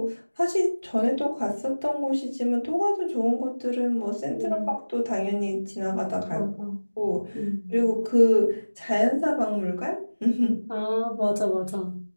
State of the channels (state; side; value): inverted; both; correlation -1.00